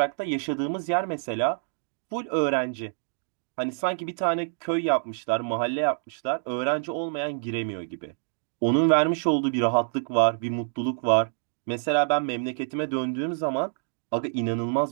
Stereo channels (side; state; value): left; silent; digital silence